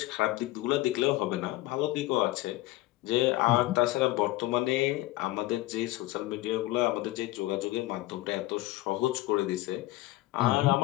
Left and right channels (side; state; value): right; quieter; 18.1 dB